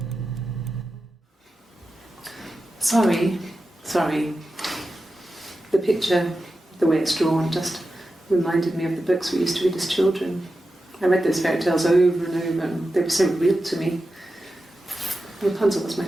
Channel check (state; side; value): normal; both; correlation 0.92